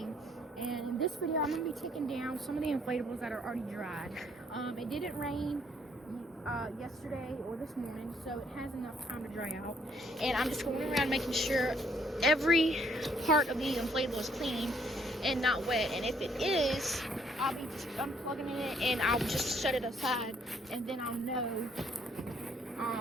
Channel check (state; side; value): normal; both; correlation 0.66